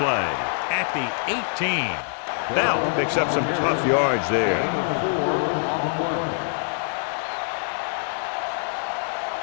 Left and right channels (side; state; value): right; silent; 62 dB below the other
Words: at the 18. Bell picks up some tough yards there.